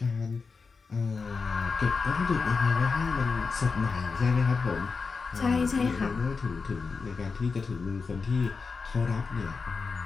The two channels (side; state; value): right; quieter; 4.7 dB